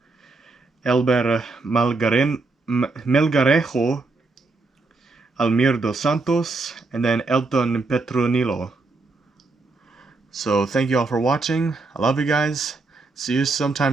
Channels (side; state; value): left; quieter; 3.6 dB